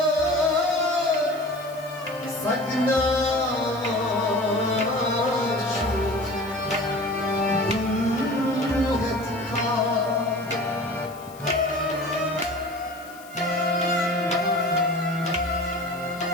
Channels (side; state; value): left; noise; hiss, 22 dB below the sound